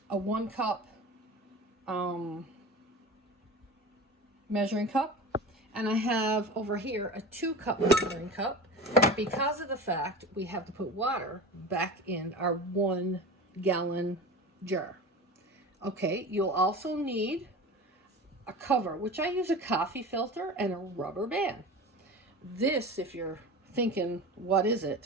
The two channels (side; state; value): both; normal; correlation 0.32